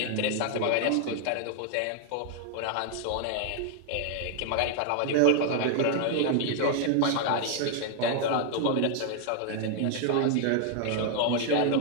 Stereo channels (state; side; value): different; both; correlation 0.00